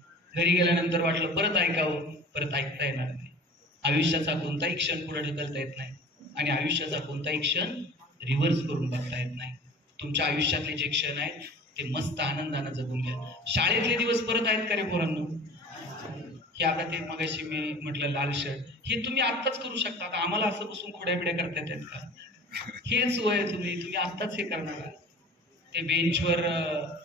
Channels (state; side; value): normal; both; correlation 0.41